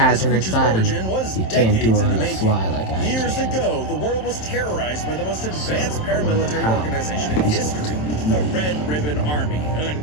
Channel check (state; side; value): late; right; 27 ms